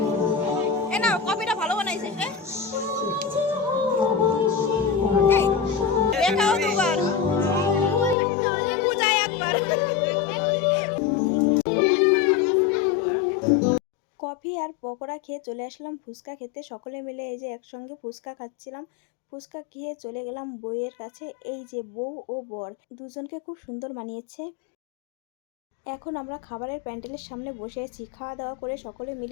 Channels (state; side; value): drops out; right; at 8.2 s